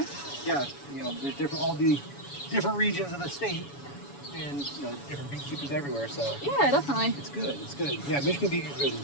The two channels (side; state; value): right; late; 7.1 ms